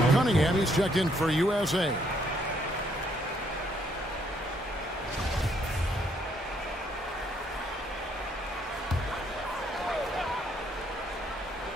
Cunningham, he's checked in for USA.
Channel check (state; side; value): normal; both; correlation 0.69